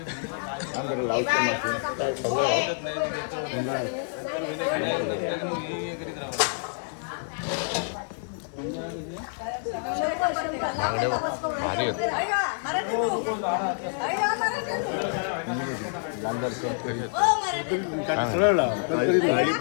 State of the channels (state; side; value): silent; right; digital silence